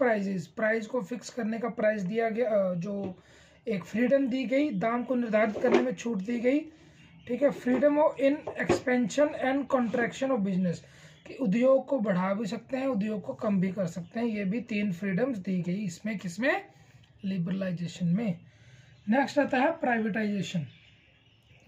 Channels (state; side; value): identical; both; correlation 1.00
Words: price को फिक्स करने का प्राइस दिया गया, जो एक फ्रीडम दी गई, दाम को निर्धारित करने में छूट दी गई। ठीक है। Freedom of in expansion and contraction of business, कि उद्योग को बढ़ा भी सकते हैं, उद्योग को कम भी कर सकते हैं। ये भी 3 फ्रीडम्स दी गई इसमें, किसमें? लिबरलाइजेशन में। नेक्स्ट आता है प्राइवेटाइजेशन।